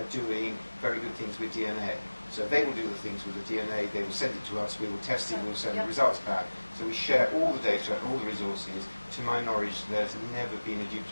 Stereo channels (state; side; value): inverted; both; correlation -1.00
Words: doing very good things with DNA. So they will do the things with the DNA, they will send it to us, we will test it, we will send the results back. So we share all the data and all the resources. To my knowledge, there's never been a